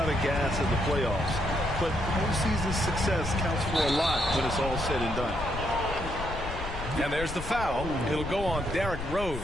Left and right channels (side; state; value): left; noise; rumble, 8 dB below the sound